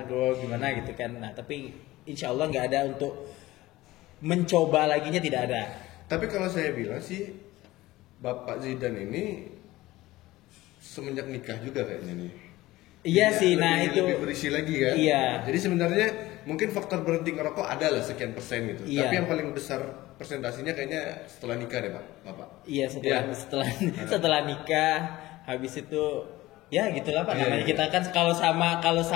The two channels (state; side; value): quieter; right; 17.9 dB